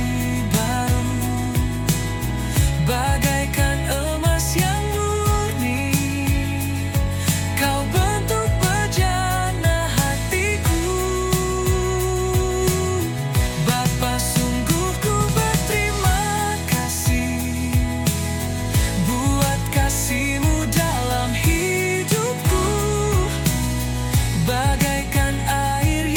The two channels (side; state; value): both; identical; correlation 1.00